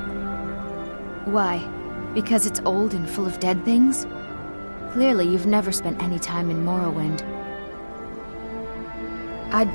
Why? Because it's old and full of dead things? Clearly, you've never spent any time in Morrowind. I'd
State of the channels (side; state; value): both; inverted; correlation -1.00